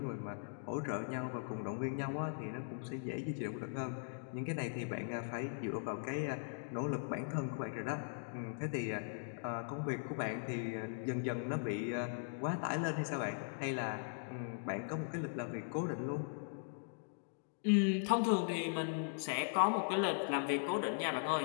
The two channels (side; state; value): right; silent; digital silence